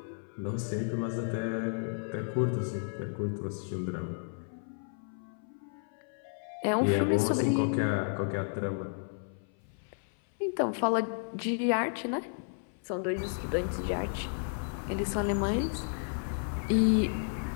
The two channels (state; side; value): silent; right; 56 dB below the other